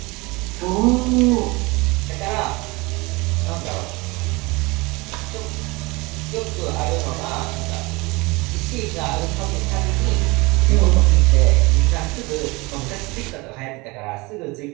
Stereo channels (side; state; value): left; quieter; 24.6 dB